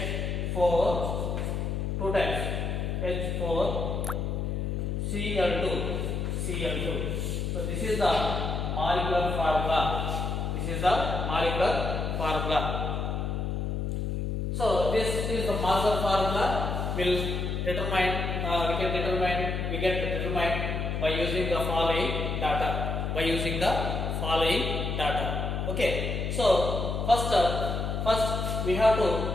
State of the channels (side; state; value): left; noise; hum, 1 dB below the sound